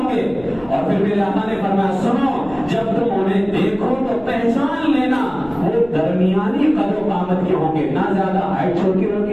گے. اور پھر میرے آقا نے فرمایا سنو جب تم انہیں دیکھو تو پہچان لینا وہ درمیانی قدر و قامت کے ہوں گے، نہ زیادہ ہائٹ چھوٹی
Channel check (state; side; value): noise; left; rumble, 22 dB below the sound